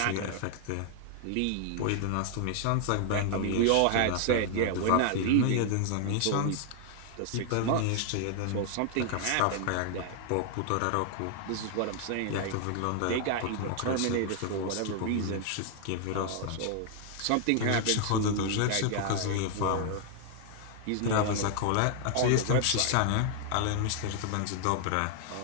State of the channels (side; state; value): both; different; correlation 0.00